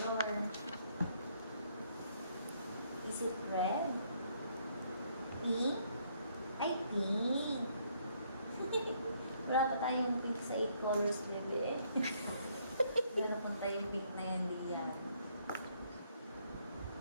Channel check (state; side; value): inverted; both; correlation -0.69